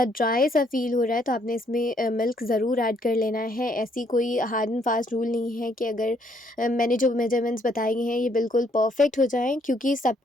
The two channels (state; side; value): normal; both; correlation 0.69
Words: सा फ़ील हो रहा है, तो आपने इसमें मिल्क ज़रूर ऐड कर लेना है। ऐसी कोई हार्ड एंड फास्ट रूल नहीं है कि अगर मैंने जो मेजरमेंट्स बताए हैं ये बिल्कुल परफ़ेक्ट हो जाएँ, क्योंकि